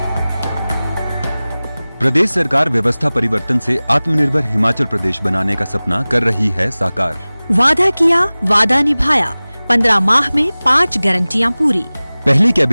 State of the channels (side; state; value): both; inverted; correlation -0.99